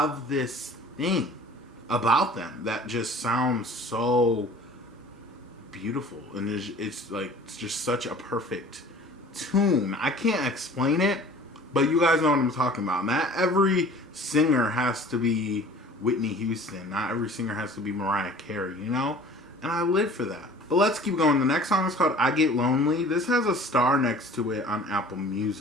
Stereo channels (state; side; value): normal; both; correlation 0.46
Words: this thing about them that just sounds so beautiful, and it's just such a perfect tune. I can't explain it, but you guys know what I'm talking about. Not every singer has to be Whitney Houston. Not every singer has to be Mariah Carey, you know? And I live for that. But let's keep going. The next song is called I Get Lonely. This has a star next to it on Apple